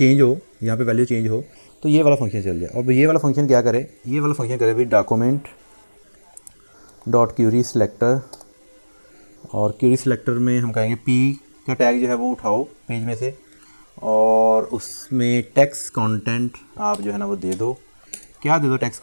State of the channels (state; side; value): inverted; both; correlation -1.00